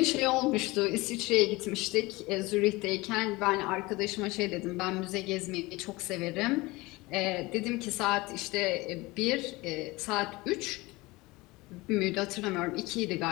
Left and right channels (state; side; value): quieter; right; 21.9 dB